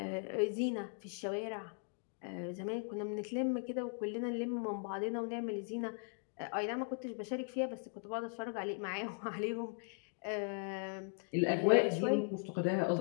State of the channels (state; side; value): silent; right; 52 dB below the other